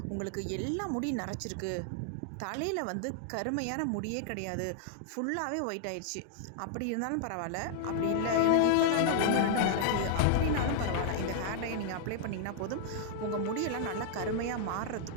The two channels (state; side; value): different; both; correlation -0.01